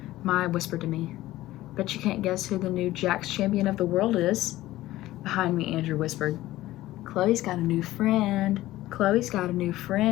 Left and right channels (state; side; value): quieter; right; 16.1 dB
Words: Maya whispered to me, "Bet you can't guess who the new Jacks champion of the world is." Behind me, Andrew whispered, "Chloe's got a new friend. Chloe's got a new